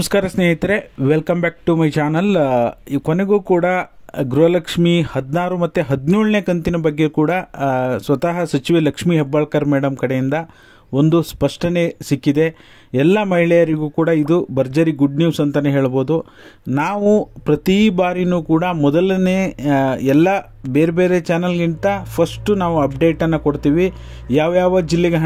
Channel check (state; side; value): identical; both; correlation 1.00